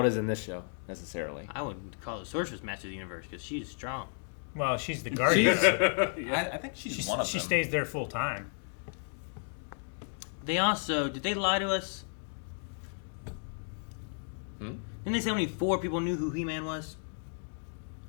it is in this show, necessarily. I wouldn't call the sorceress master of the universe because she's strong. Well, she's the guardian. I think she's one of She them. stays there full time. They also did they lie to us? Didn't they say only 4 people knew who He-Man was?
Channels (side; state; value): right; silent; 56 dB below the other